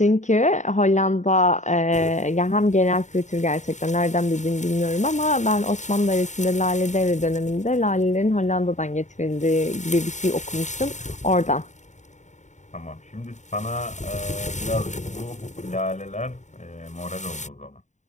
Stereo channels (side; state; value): right; late; 0.35 ms